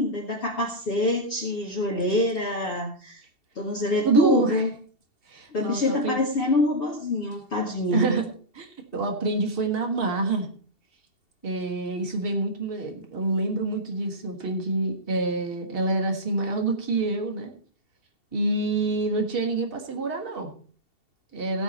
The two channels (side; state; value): right; late; 2.7 ms